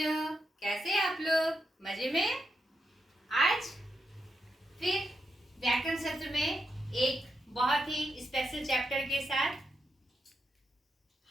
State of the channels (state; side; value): normal; both; correlation 0.84